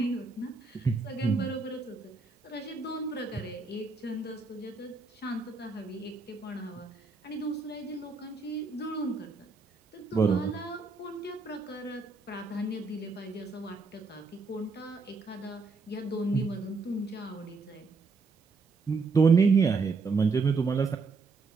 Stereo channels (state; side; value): quieter; left; 4.2 dB